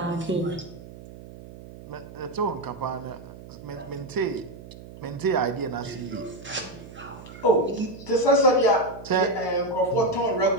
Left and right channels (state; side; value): noise; right; hum, 16 dB below the sound